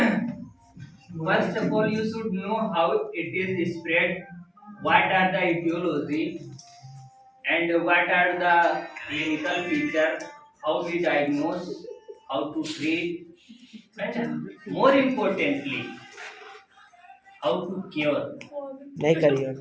first of all, you should know how it is spread, what are the etiology, and what are the clinical features, how we diagnose, how to treat, and more importantly, how to cure. नहीं करिए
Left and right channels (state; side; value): identical; both; correlation 1.00